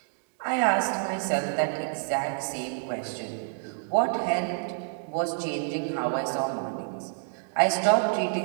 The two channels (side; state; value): left; silent; digital silence